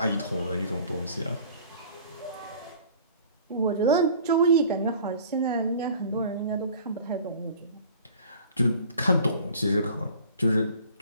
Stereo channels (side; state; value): both; inverted; correlation -0.47